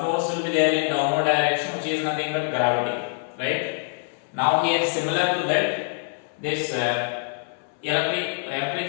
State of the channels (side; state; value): right; silent; 61 dB below the other